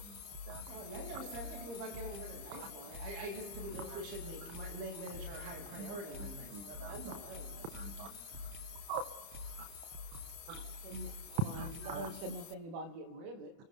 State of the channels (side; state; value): left; late; 30 ms